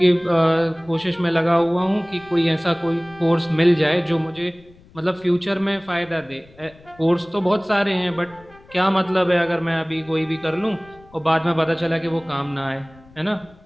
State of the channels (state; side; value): noise; left; rumble, 26 dB below the sound